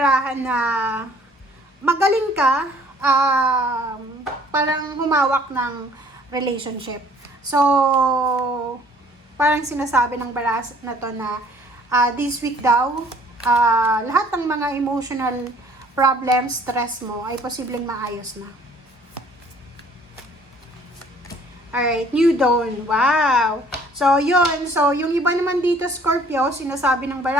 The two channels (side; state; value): both; normal; correlation 0.56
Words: na magaling ka, parang humawak ng relationship. So, parang sinasabi ng barahan na to na this week daw, lahat ng mga emotional problems, stress mo ay posibleng maayos na. Alright, new dawn. Wow! So, yun. So, yung iba naman dito, Scorpio, sinasabi ng